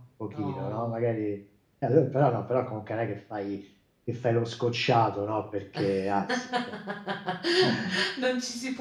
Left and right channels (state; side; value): identical; both; correlation 1.00